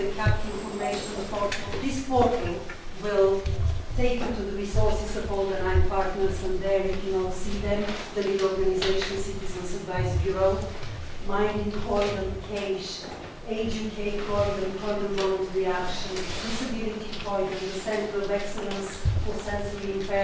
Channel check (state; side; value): identical; both; correlation 1.00